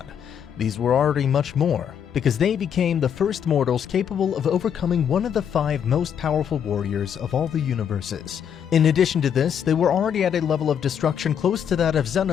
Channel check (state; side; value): quieter; right; 8.3 dB